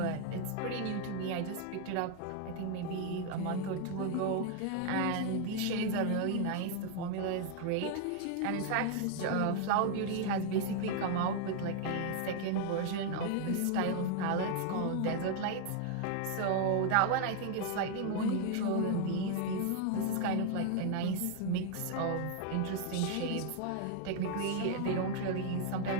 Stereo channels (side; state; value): both; different; correlation 0.00